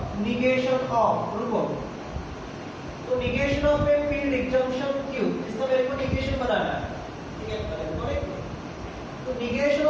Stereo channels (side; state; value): both; identical; correlation 1.00